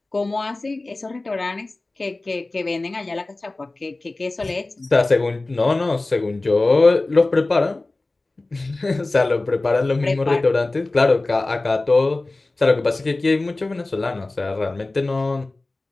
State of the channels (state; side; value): quieter; right; 3.1 dB